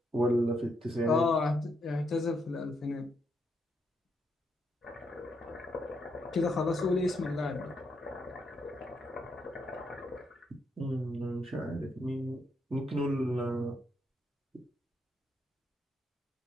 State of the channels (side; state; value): both; normal; correlation 0.77